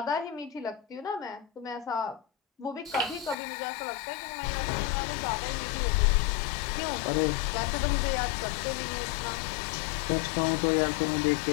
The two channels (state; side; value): drops out; right; at 3.4 s